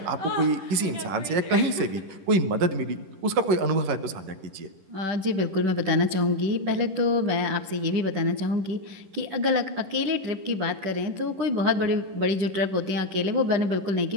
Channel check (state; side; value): late; left; 10 ms